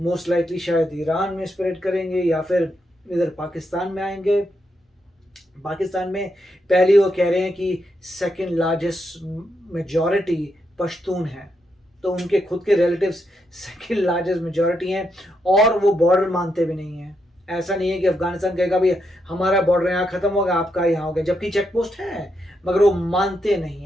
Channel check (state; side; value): normal; both; correlation 0.81